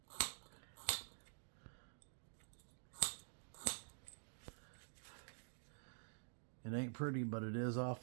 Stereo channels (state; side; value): silent; left; digital silence